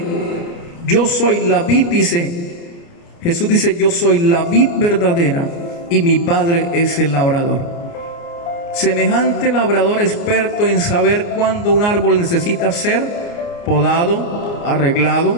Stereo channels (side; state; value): right; late; 29 ms